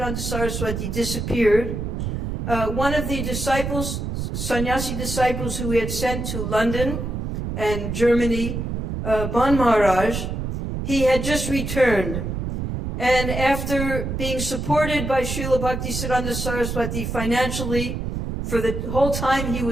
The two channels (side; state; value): right; noise; rumble, 4 dB below the sound